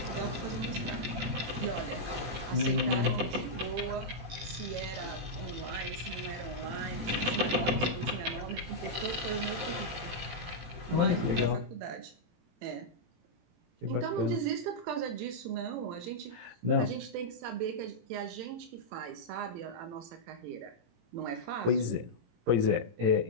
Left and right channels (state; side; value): late; left; 18 ms